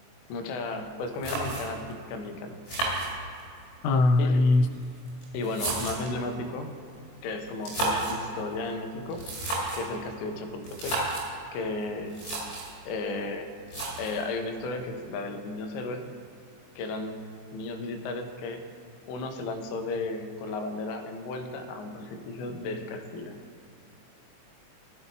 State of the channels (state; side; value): late; right; 23 ms